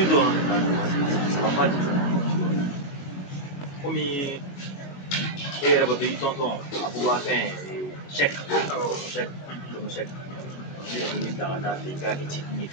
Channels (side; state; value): right; late; 21 ms